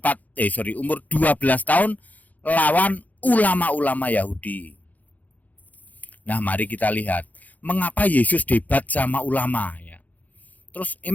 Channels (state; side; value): late; right; 0.079 ms